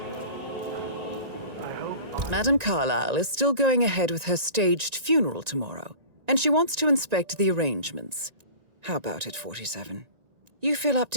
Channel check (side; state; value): left; late; 1.9 ms